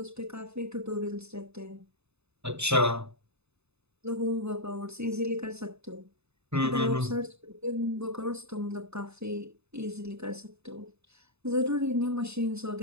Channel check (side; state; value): left; late; 0.80 ms